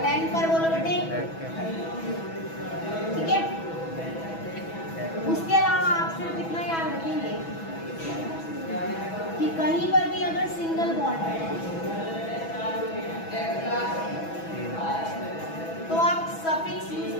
10 पर बोलो बेटे, ठीक है? उसके अलावा आप सिर्फ इतना याद रखेंगे कि कहीं पर भी अगर सिंगल बॉन्ड है तो आप सफिक्स यूज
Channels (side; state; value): right; late; 6.1 ms